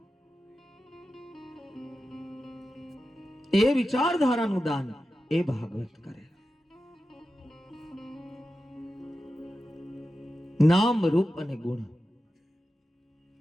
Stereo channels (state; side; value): normal; both; correlation 0.92